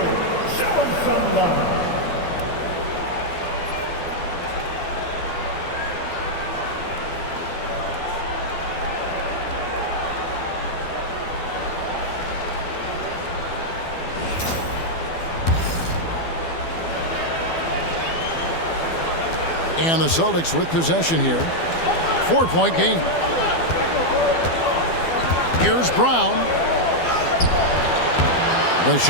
show them some love. And the Celtics with possession here. 4-point game. Here's Brown. The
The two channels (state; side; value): late; right; 12 ms